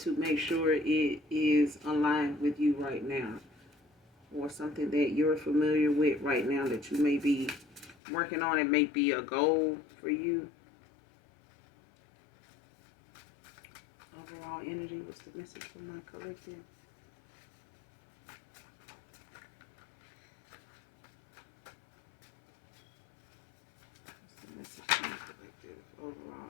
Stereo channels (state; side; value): drops out; right; at 8.0 s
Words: make sure it is aligned with you right now, or something that you're familiar with right now that you may be working on. It may be a goal for you. Overall energy, what's the message from my collective? What's the message from my collective? Overall